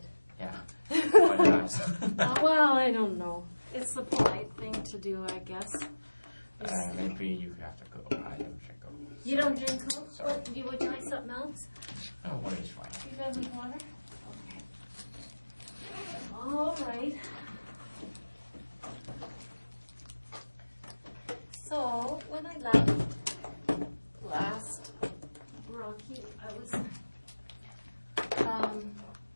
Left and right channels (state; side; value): inverted; both; correlation -1.00